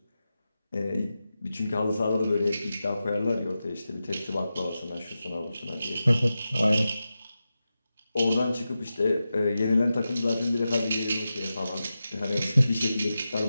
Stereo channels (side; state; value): both; inverted; correlation -0.92